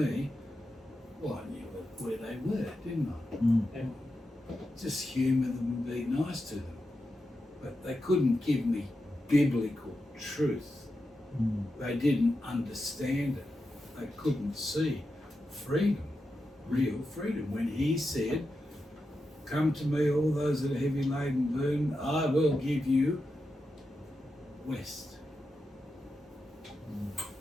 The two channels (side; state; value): both; normal; correlation 0.89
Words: well, I knew where they were, didn't I? Yeah. Just humour them and be nice to them. But they couldn't give me biblical truth. They didn't understand it. They couldn't see freedom, real freedom. When he said, "Come to me, all those that are heavy laden and burdened, I will give you rest."